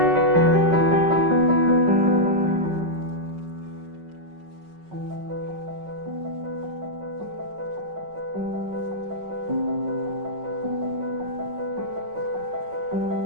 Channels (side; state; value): left; late; 5.4 ms